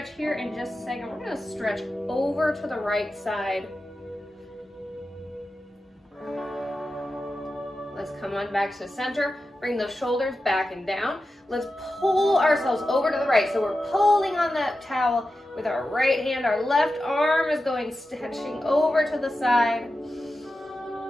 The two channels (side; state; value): both; normal; correlation 0.92